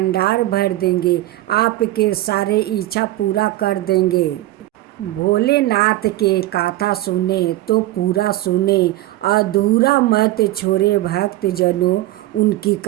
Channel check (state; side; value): quieter; left; 16.4 dB